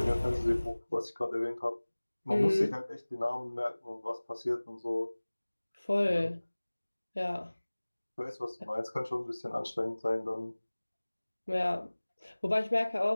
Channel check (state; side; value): inverted; both; correlation -1.00